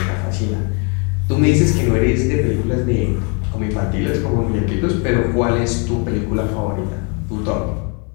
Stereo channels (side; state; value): right; quieter; 35.7 dB